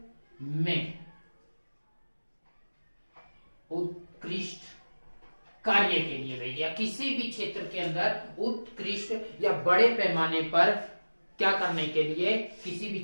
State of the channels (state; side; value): inverted; both; correlation -1.00